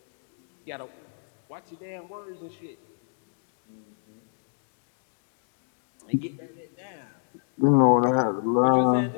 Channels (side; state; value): right; silent; digital silence